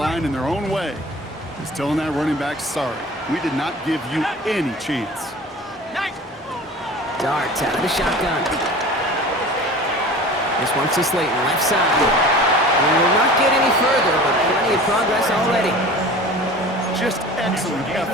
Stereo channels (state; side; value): normal; both; correlation 0.40